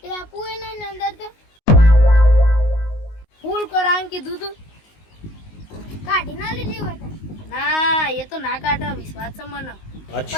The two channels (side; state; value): right; late; 19 ms